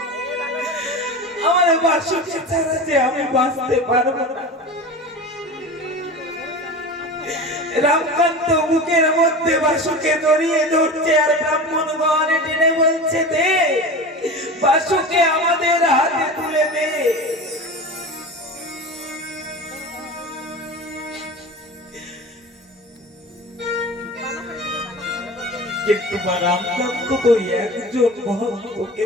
আমার বাসুকে ছাড়া যে আমি বাঁচতে পারবো না। রামকান্ত বুকের মধ্যে বাসুকে জড়িয়ে ধরছে আর ব্রাহ্মণগণ টেনে বলছে, দে বাসুকে আমাদের হাতে তুলে দে। কিন্তু রামকান্ত তো একজন ভক্ত,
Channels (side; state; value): both; normal; correlation 0.31